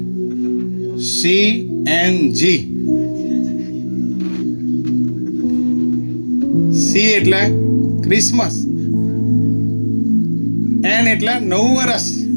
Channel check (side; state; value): both; inverted; correlation -1.00